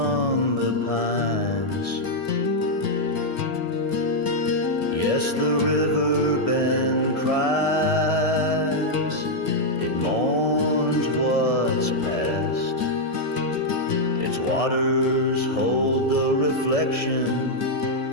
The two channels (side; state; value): right; late; 1.6 ms